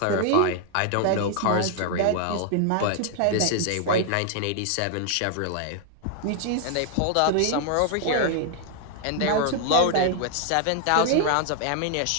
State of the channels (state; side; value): different; both; correlation 0.00